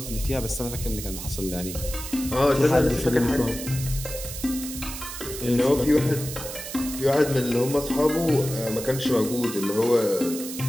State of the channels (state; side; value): noise; right; hiss, 9 dB below the sound